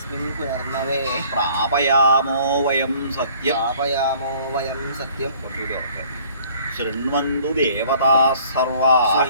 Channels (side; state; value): both; inverted; correlation -0.56